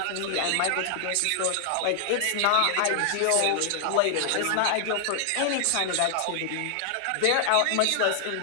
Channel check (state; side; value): different; both; correlation 0.00